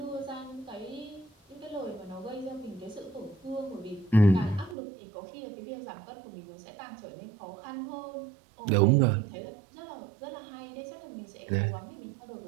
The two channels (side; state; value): left; drops out; at 4.8 s